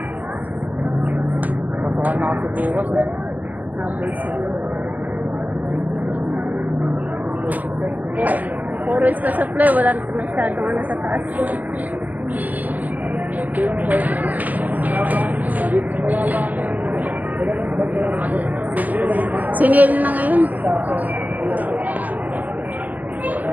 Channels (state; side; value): late; left; 0.079 ms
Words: Patuhan na kasi bukas eh. Habol sila. Puro is ka-supply. Wala na masyadong ano sa taas. Sinil na ngayon.